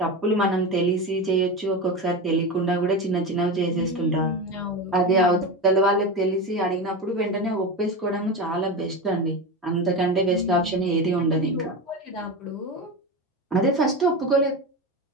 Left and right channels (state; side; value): normal; both; correlation 0.21